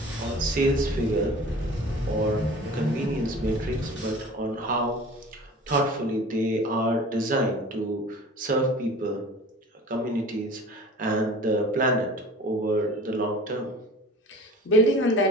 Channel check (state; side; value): normal; both; correlation 0.42